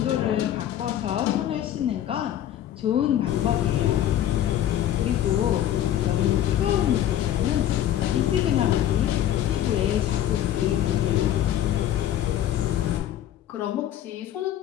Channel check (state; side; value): quieter; right; 11.6 dB